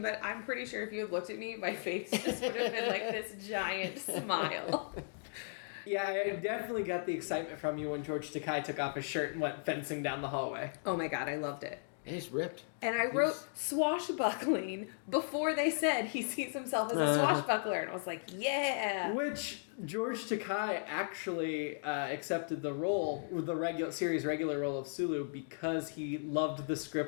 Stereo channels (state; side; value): silent; right; digital silence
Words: but I'm pretty sure if you had looked at me, my face just would have been like this giant smile. Yeah, I definitely got the excitement from you when George Takei took off his shirt and went fencing down the hallway. Oh my god, I loved it. It's ripped. And I wrote swashbuckling before they said he sees himself as a swashbuckler. And I was like, yeah. Which George Takei actually accepted the role, the series regular role of Sulu, because he loved the